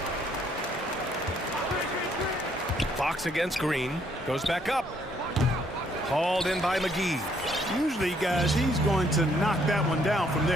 Fox against Green. Goes back up. Hauled in by McGee. Usually, guys, he's going to knock that one down from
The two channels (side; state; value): both; normal; correlation 0.68